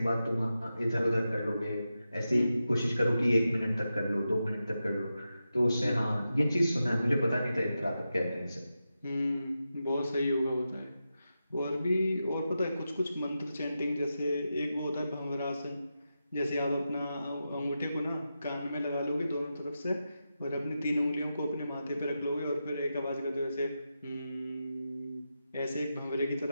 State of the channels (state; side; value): inverted; both; correlation -0.90